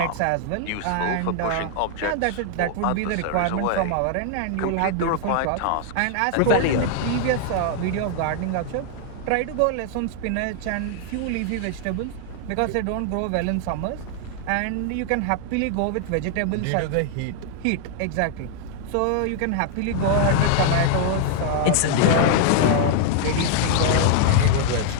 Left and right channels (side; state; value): both; different; correlation 0.00